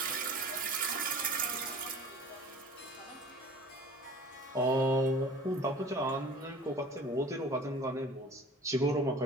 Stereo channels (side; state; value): both; normal; correlation 0.43